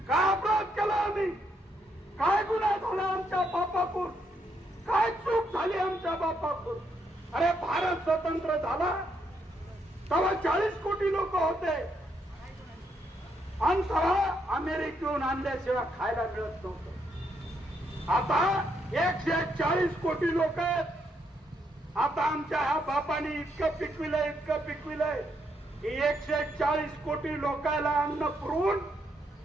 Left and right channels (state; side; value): normal; both; correlation 0.76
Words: काय अपराध केला आम्ही, काय गुन्हा झाला आमच्या बापाकडून, काय चूक झाली आमच्या बापाकडून. अरे भारत स्वतंत्र झाला तेव्हा 40 कोटी लोक होते आणि तेव्हा अमेरिकेहून आणल्याशिवाय खायला मिळत नव्हतं. आता 140 कोटी लोक आहेत. आता आमच्या ह्या बापाने इतकं पिकविलंय की 140 कोटी लोकांना अन्न पुरवून